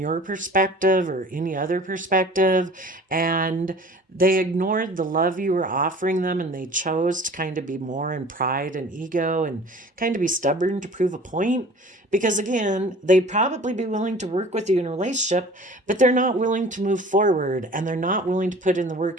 perspective or any other perspective. And they ignored the love you were offering them, and they chose to kind of be more in pride and ego and kind of be stubborn to prove a point. Because again, they'd probably be willing to work with you in a relationship, but they're not willing to move forward, and they're not willing to put in the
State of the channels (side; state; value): both; normal; correlation 0.45